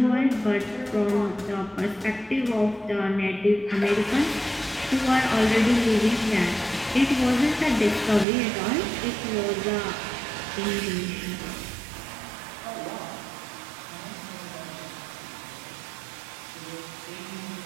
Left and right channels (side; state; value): left; drops out; at 8.2 s